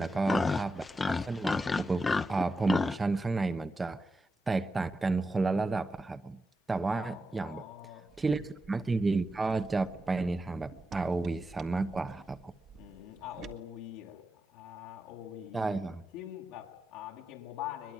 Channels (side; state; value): both; normal; correlation 0.89